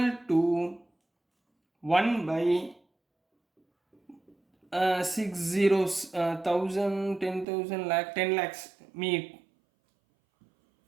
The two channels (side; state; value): left; drops out; at 7.5 s